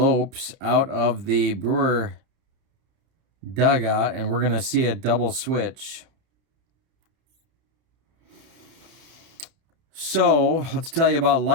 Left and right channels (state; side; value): late; left; 30 ms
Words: out of the Brewer dugout, and we're going to see a double switch. So let's tell you about